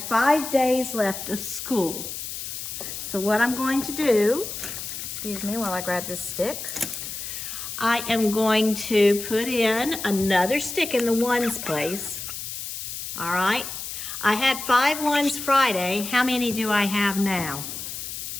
5 days left of school. So what I'm going to do, excuse me while I grab this stick, I am going to put in another stick in the ones place. All right, I had 5 ones Friday. How many do I have now?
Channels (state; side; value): noise; left; hiss, 7 dB below the sound